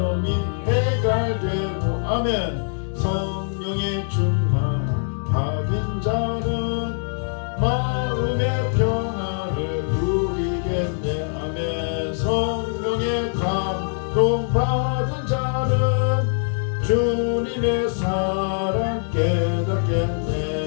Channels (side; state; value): right; silent; digital silence